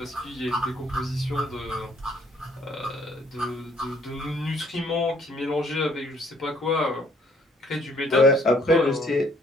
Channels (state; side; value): normal; both; correlation 0.63